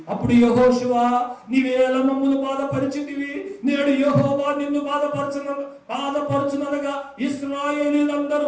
అప్పుడు యెహోషువ, నీవేళ మమ్మును బాధపరిచితివి, నేడు యెహోవా నిన్ను బాధపరచుననగా ఇశ్రాయేలీయులందరూ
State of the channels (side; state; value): both; identical; correlation 1.00